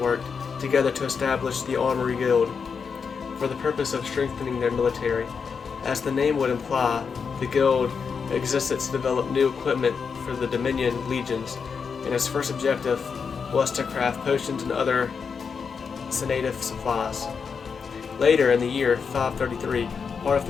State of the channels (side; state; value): right; quieter; 5.9 dB